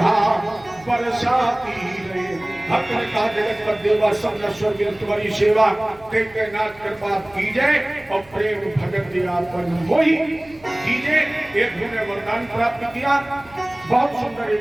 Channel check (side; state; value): right; noise; hum, 25 dB below the sound